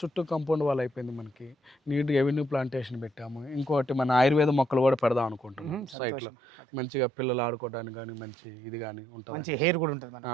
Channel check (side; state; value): left; drops out; at 6.0 s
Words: చుట్టూ కాంపౌండ్ వాల్ అయిపోయింది. మనకి నీట్గా ఎవెన్యూ ప్లాంటేషన్ పెట్టాము. ఇంకోటి మన ఆయుర్వేద మొక్కలు కూడా పెడదాం అనుకుంటున్నాం సైట్లో. మంచిగా పిల్లలు ఆడుకోవడానికి కానీ మంచి ఇది కానీ ఉంటుంది, హెయిర్ కూడా ఉంటుంది,